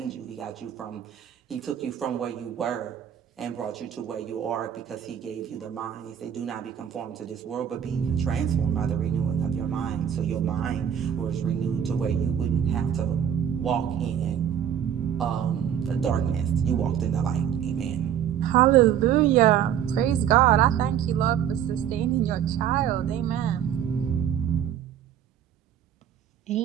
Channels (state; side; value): quieter; left; 9.3 dB